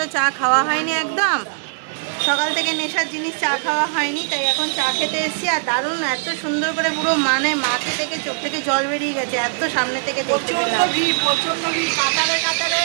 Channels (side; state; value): left; silent; digital silence